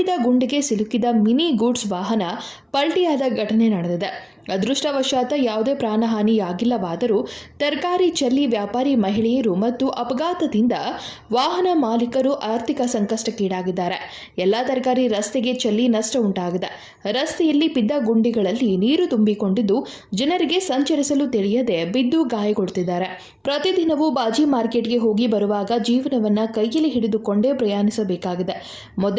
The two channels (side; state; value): both; identical; correlation 1.00